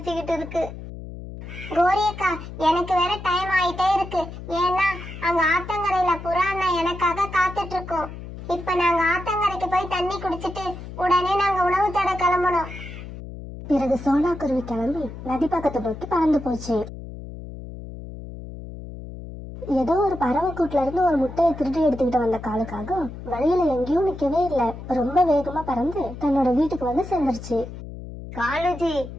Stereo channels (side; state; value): left; noise; hum, 12 dB below the sound